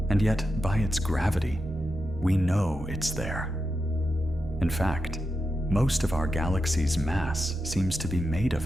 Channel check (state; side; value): normal; both; correlation 0.88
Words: and yet by its gravity, we know it's there. In fact, most of our galaxy's mass seems to be made